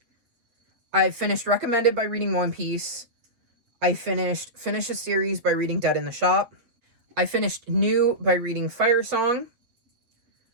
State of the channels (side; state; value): left; late; 8.2 ms